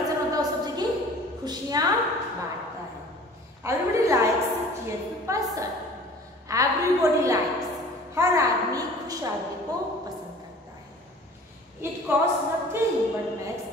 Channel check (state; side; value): normal; both; correlation 0.46